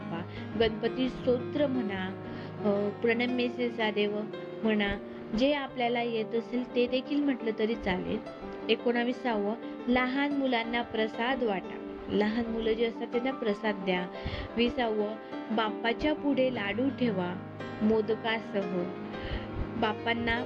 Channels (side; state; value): both; identical; correlation 1.00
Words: गणपती स्तोत्र म्हणा, प्रणम्यसे सदेव म्हणा, जे आपल्याला येत असेल ते देखील म्हटलं तरी चालेल। 19वं, लहान मुलांना प्रसाद वाटा, लहान मुलं जे असतात त्यांना प्रसाद द्या। 20वं, बाप्पाच्या पुढे लाडू ठेवा, मोदकासह. बाप्पांना